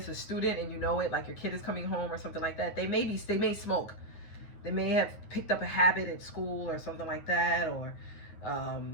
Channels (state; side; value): late; right; 9.2 ms